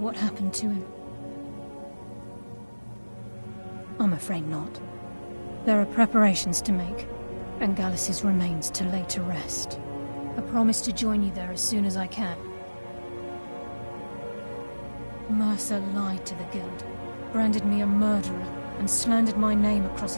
happened to him. I'm afraid not. There are preparations to make, and Gallus's remains to lay to rest. I promise to join you there as soon as I can. Mercer lied to the Guild, branded me a murderer, and slandered my name across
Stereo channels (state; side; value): inverted; both; correlation -1.00